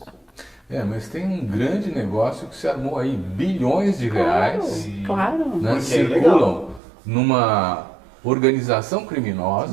Mas tem um grande negócio que se armou aí, bilhões de reais. Claro. Né, circulam numa organização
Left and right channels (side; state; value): left; drops out; at 6.8 s